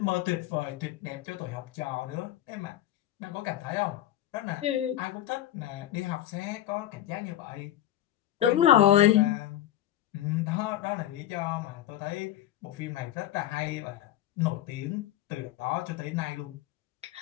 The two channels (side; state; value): right; quieter; 12.9 dB